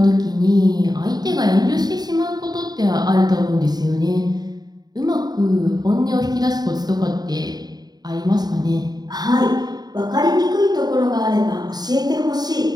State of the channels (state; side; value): late; left; 0.19 ms